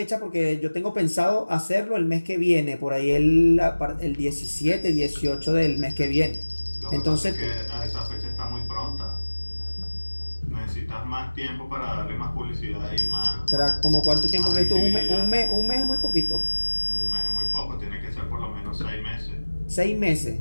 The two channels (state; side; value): inverted; both; correlation -1.00